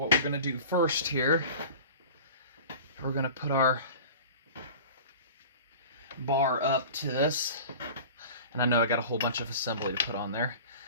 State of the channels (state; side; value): inverted; both; correlation -0.38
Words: we're going to do first here, we're going to put our bar up to this. And I know I got a whole bunch of assembly to put on there.